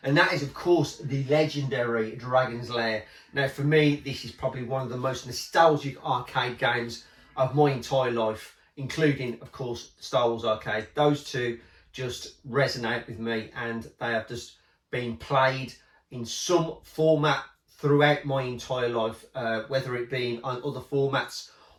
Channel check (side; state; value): both; identical; correlation 1.00